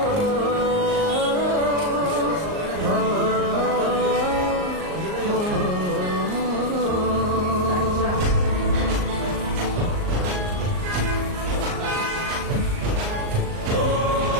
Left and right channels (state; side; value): late; left; 38 ms